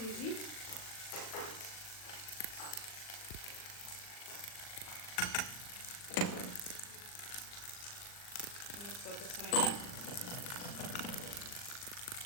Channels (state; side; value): late; right; 39 ms